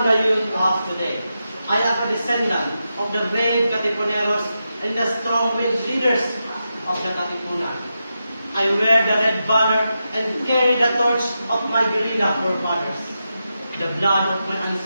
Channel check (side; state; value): both; inverted; correlation -0.88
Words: the youth of today. I am a descendant of the brave Katipuneros and the strong-willed leaders of the Katipunan. I wear the red banner and carry the torch of my guerrilla forefathers. The blood of my